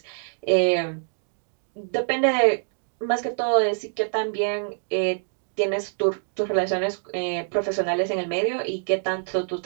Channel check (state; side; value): silent; left; digital silence